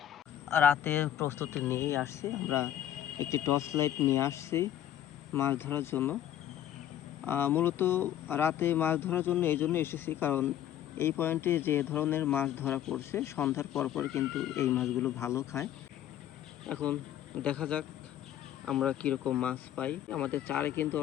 রাতে প্রস্তুতি নিয়েই আসছি আমরা, একটি টর্চ লাইট নিয়ে আসছি মাছ ধরার জন্য। মূলত রাতে মাছ ধরার জন্য এই জন্য এসেছি, কারণ এই পয়েন্টে যে ধরনের মাছ ধরা পড়ছে সন্ধ্যার পর কিন্তু এই মাছগুলো ভালো খায়। এখন দেখা যাক আমরা কিরকম মাছ পাই। আমাদের চারে কিন্তু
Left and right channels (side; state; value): right; quieter; 11.5 dB